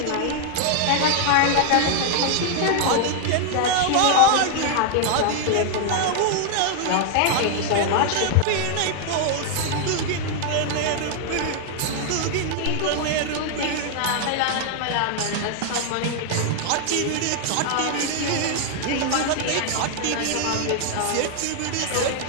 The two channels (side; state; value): both; different; correlation 0.00